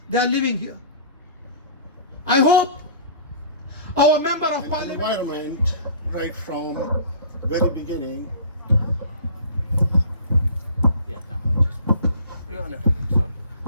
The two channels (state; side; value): inverted; both; correlation -0.45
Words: they are living here. I hope our member of parliament, environment right from very beginning.